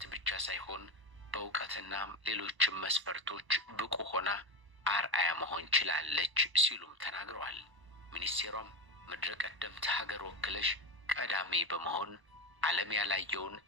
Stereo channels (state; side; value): late; left; 1.0 ms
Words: ብቻ ሳይሆን በእውቀትና ሌሎችም መስፈርቶች ብቁ ሆና አርአያ መሆን ችላለች ሲሉም ተናግረዋል። ሚኒስቴሯም ምድረ ቀደምት ሀገር ወክለሽ ቀዳሚ በመሆን ዓለም ያላየውን